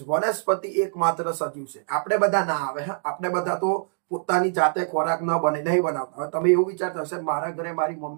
વનસ્પતિ એકમાત્ર સજીવ છે. આપણે બધા ના આવે, હા, આપણે બધા તો પોતાની જાતે ખોરાક ન બને, નહીં બનાવતા. હવે તમે એવું વિચારતા હશે મારા ઘરે મારી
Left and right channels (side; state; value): left; silent; digital silence